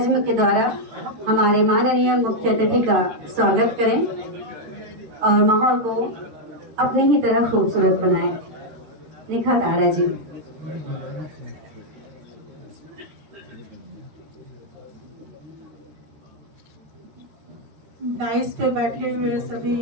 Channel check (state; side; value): late; left; 13 ms